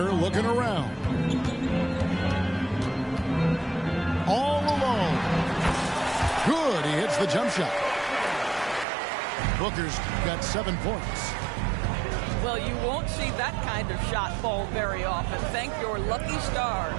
looking around. All alone. Good, he hits the jump shot. Booker's got 7 points. Well, you won't see that kind of shot fall very often. Thank your lucky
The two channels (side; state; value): left; drops out; at 8.8 s